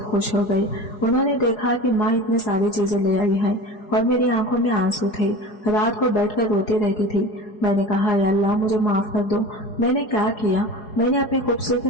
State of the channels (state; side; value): late; right; 4.8 ms